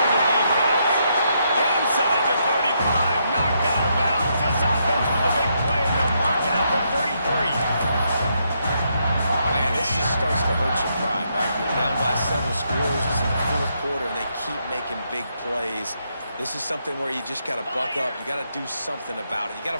the defense. Inside the 35, knocked out of bounds. This offense with a big play, and they'll mark it out to 33. Man, this just starts to hurt your pride, right? You're down by several scores. It's in the 4th quarter, and they keep making big plays. This is something where you just got to buck up. You got to do something about it. You got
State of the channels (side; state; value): both; inverted; correlation -0.78